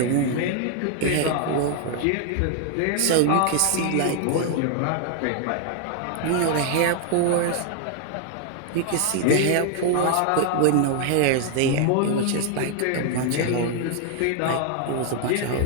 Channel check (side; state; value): both; different; correlation 0.00